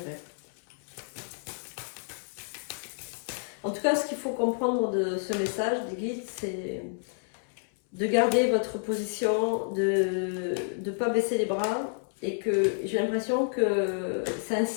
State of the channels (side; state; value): right; silent; 58 dB below the other